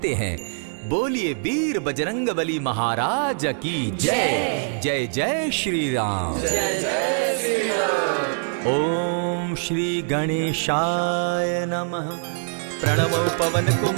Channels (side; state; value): left; silent; digital silence